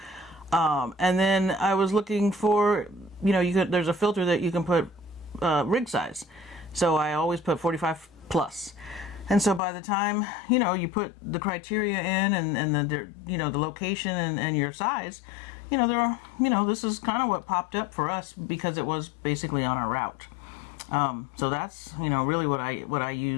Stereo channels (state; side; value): drops out; right; at 9.6 s